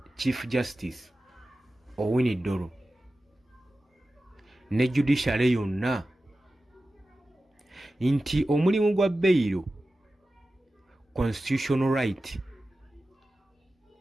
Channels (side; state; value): both; normal; correlation 0.94